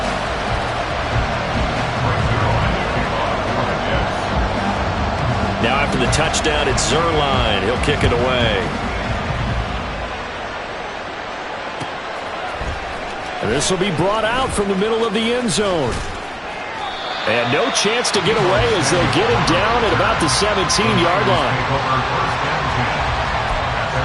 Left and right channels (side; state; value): both; identical; correlation 1.00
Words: Now after the touchdown, it's Zerline. He'll kick it away. And this will be brought out from the middle of the end zone. And no chance to get away as they'll get him down at about the 17-yard line.